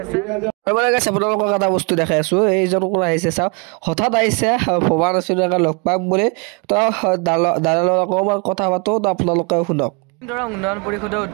আপোনালোকক এটা বস্তু দেখাই আছো এইজন কোন আহিছে চাওক হঠাৎ আহিছে ভবা নাছিলো লগ পাম বুলি তো দাদাৰ অকণমান কথা পাতো তো আপোনালোকে শুনক উন্নয়ন পৰিষদৰ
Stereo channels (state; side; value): quieter; left; 32.8 dB